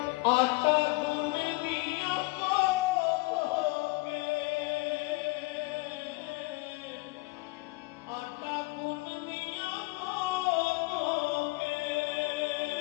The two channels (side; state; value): right; quieter; 24.0 dB